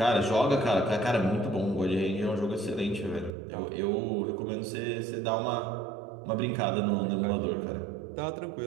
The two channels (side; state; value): left; drops out; at 3.3 s